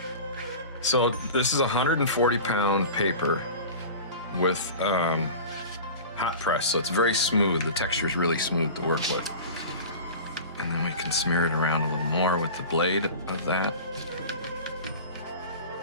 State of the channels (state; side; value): inverted; both; correlation -0.35